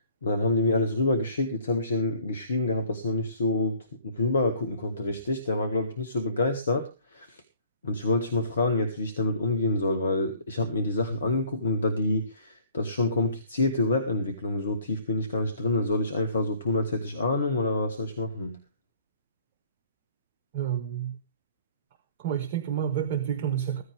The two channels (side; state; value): both; inverted; correlation -0.54